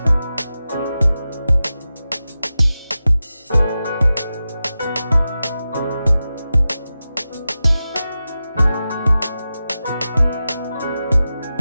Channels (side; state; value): both; inverted; correlation -0.93